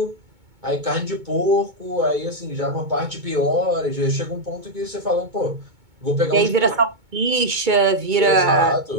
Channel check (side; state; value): left; late; 2.2 ms